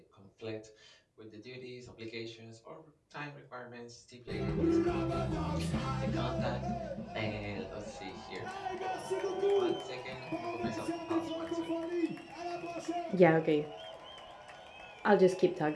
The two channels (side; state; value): both; identical; correlation 1.00